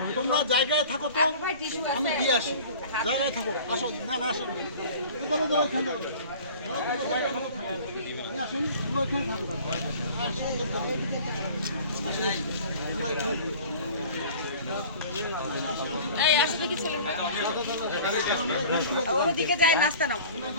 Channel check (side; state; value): both; inverted; correlation -0.44